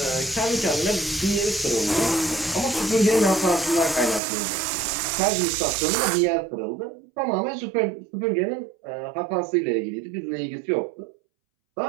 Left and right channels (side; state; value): left; drops out; at 4.2 s